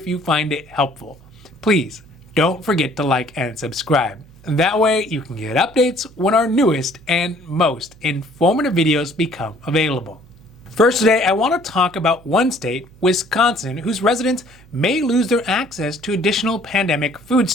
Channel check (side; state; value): right; noise; hum, 25 dB below the sound